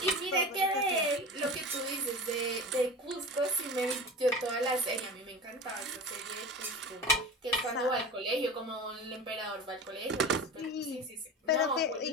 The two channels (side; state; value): both; normal; correlation 0.31